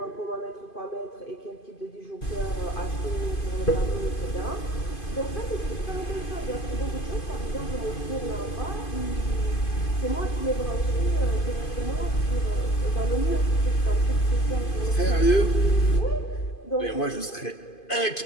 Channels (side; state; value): right; late; 2.5 ms